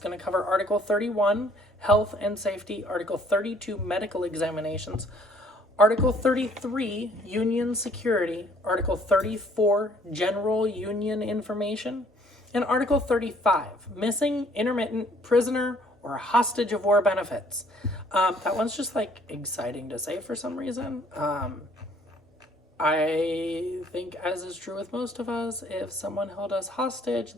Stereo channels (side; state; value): both; normal; correlation 0.61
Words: to cover Article 31, Health and Safety, Article 32, Medical Examinations, Article 33, Union Security, Article 34, General Union Information, and Article 35, Missing, Intermittent, Prisoner, or Hostage of War Benefits. That one's just like exciting to say for some reason. I think, as is true with most of us, if someone held us hostage,